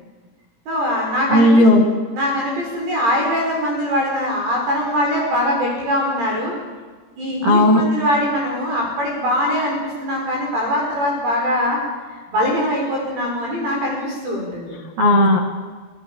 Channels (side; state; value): left; late; 18 ms